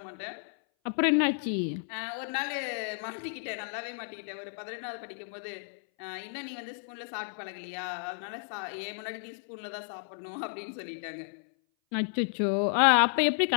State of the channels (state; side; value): silent; right; 56 dB below the other